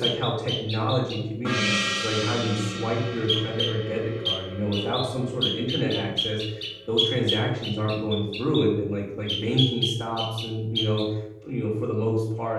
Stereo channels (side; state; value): both; identical; correlation 1.00